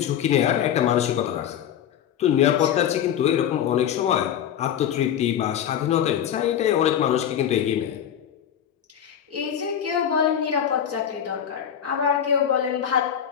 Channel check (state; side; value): quieter; right; 9.5 dB